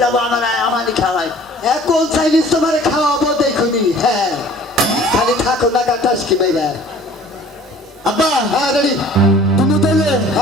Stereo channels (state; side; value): normal; both; correlation 0.50